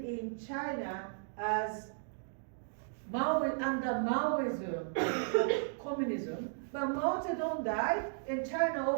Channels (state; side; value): silent; left; digital silence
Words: in China as under Maoism, communism, but Mao Zedong died and China